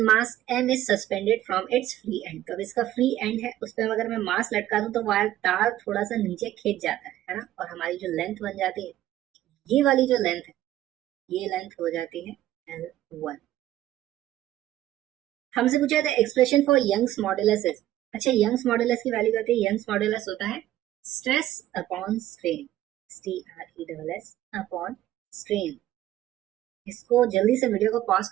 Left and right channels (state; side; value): quieter; left; 13.8 dB